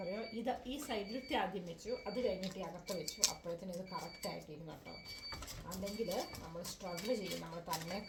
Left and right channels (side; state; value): both; identical; correlation 1.00